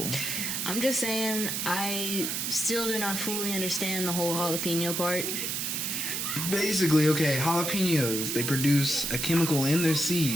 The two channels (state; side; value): noise; right; hiss, 1 dB below the sound